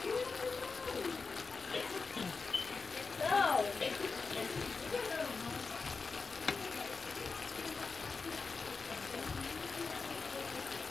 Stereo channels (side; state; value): right; quieter; 4.5 dB